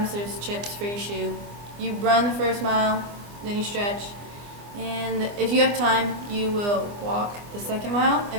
there's chips for your shoe. You run the first mile, then you stretch, and if you have time, you will walk the second mile.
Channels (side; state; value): left; late; 25 ms